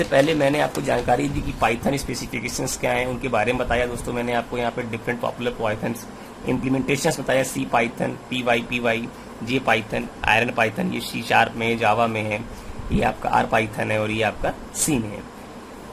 पहले मैंने आपको जानकारी दी कि पाइथन स्पेसिफिकेशंस क्या हैं, उनके बारे में बताया। दोस्तों मैंने आपको यहाँ पे डिफरेंट पॉपुलर पाइथन इम्प्लीमेंटेशंस बताया, C Python, PY, J Python, iron Python, ये C# में, जावा में है, ये आपका R पाइथन है, और ये आपका C में है।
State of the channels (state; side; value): identical; both; correlation 1.00